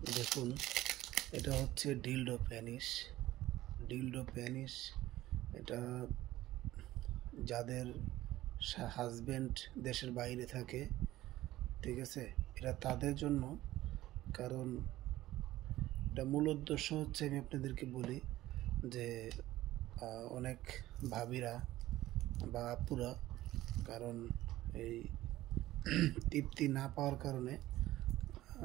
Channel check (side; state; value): left; quieter; 15.7 dB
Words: দেখুন, এটা হচ্ছে ডিলডো প্যানিশ। এটা যাদের হাজবেন্ড দেশের বাইরে থাকে, ঠিক আছে, এটা তাদের জন্য। কারণ এটা মূল উদ্দেশ্য হচ্ছে, আমি আপনাদেরকে বলি যে অনেক ভাবিরা বা আপুরা, কারণ এই তৃপ্তি না পাওয়ার কারণে